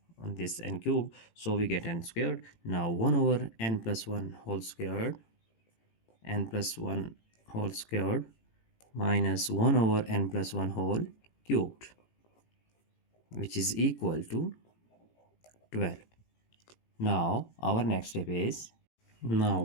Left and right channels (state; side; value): late; right; 18 ms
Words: on this n cube, so we get n squared. Now 1 over n plus 1 whole squared, n plus 1 whole squared minus 1 over n plus 1 whole cubed, which is equal to 12. Now our next step is, now